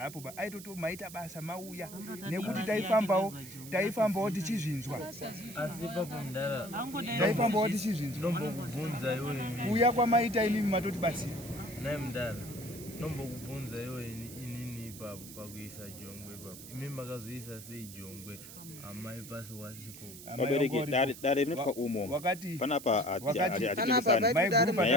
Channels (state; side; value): noise; right; hiss, 14 dB below the sound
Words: aitoto maita basa mauya nekuti taifambawo tichizvinzwa taifambawo tichizvinzwa kuuya kwamaita imimi matoti basira naye mdala nombokubvunza iwe inini ipapo pakuisa jongwe ipapo imi makazoisa sei jongwe amai pasi wasipo vabereki dare rinotwa umo panapa hatinyaaya